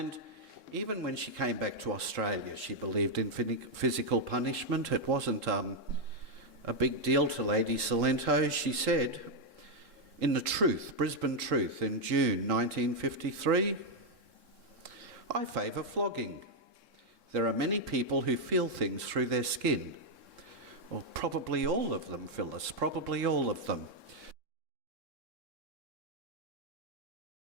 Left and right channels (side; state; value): left; late; 3.7 ms